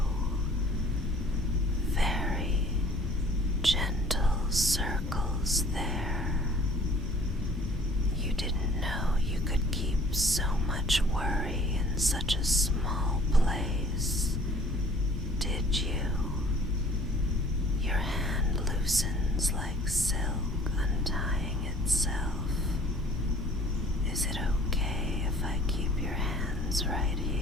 very gentle circles there. You didn't know you could keep so much worry in such a small place, did you? Your hand loosens like silk untying itself. Is it okay if I keep your hands right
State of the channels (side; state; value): both; normal; correlation 0.53